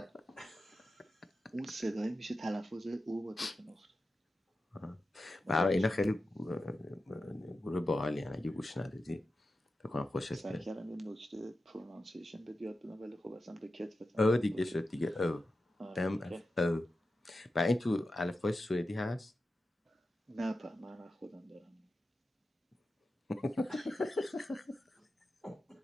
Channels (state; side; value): normal; both; correlation 0.92